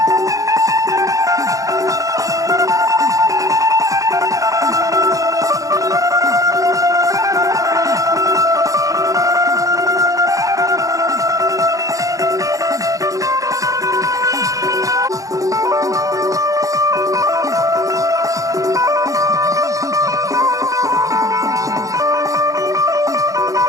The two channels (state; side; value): late; left; 0.16 ms